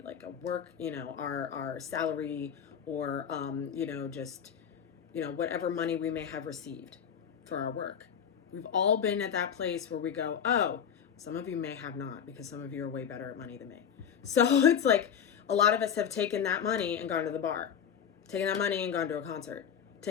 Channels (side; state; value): right; quieter; 8.2 dB